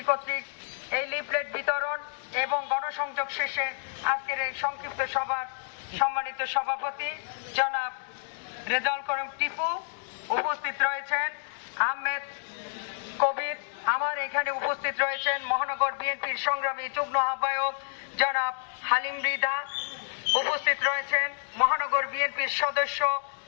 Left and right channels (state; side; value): silent; right; digital silence